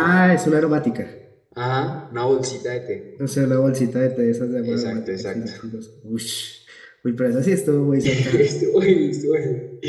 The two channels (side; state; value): both; identical; correlation 1.00